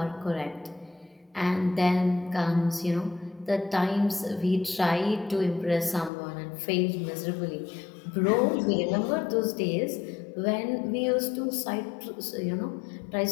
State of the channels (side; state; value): right; drops out; at 6.1 s